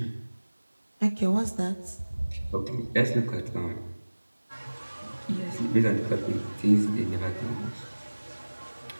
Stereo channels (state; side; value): inverted; both; correlation -1.00